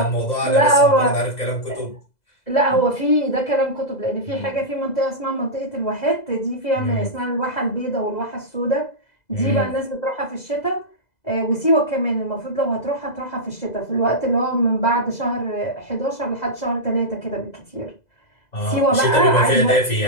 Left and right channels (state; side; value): late; right; 2.0 ms